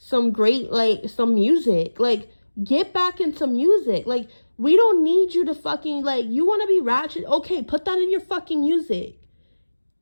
great, like, some music. Like, get back into music. Like, we don't need you to fucking, like, you want to be ratchet? Okay, put that in your fucking music.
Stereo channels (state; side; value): inverted; both; correlation -1.00